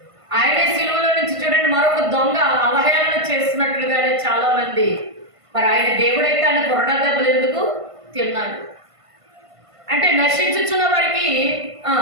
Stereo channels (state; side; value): late; left; 1.5 ms